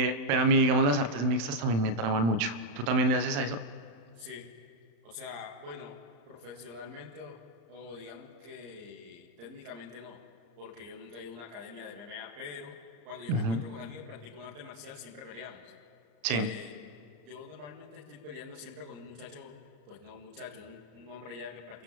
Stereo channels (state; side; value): late; left; 34 ms